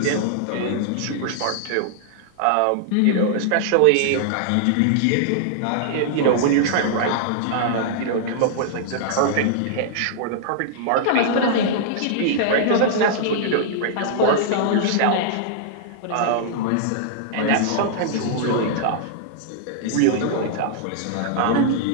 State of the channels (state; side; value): different; both; correlation -0.01